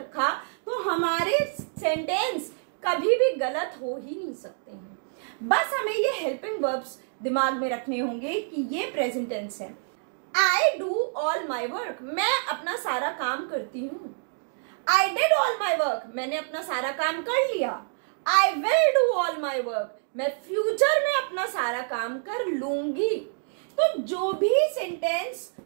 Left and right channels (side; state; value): left; silent; 60 dB below the other